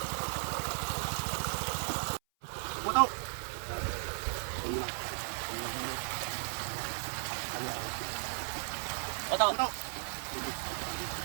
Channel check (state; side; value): silent; left; 54 dB below the other